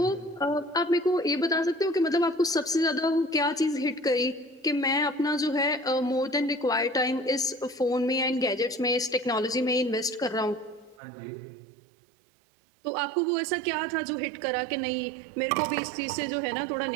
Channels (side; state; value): left; drops out; at 11.0 s